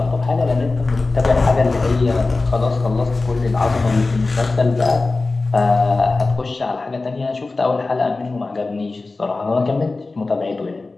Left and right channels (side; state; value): right; quieter; 3.5 dB